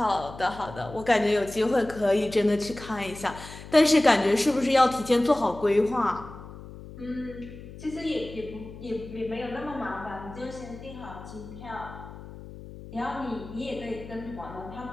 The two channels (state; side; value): noise; left; hum, 15 dB below the sound